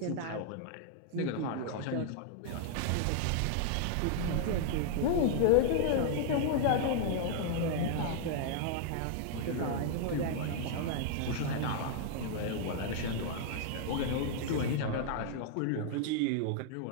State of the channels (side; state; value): both; different; correlation -0.01